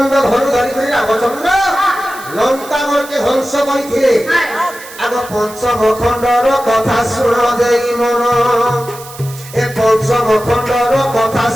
ধনু ধরি করে রামচন্দ্র লঙ্কাগড়কে ধ্বংস করিছিলে আগ পঞ্চম খণ্ডর কথা শুণ দেই মন এ পঞ্চম খণ্ডর কথা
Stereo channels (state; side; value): noise; right; hiss, 17 dB below the sound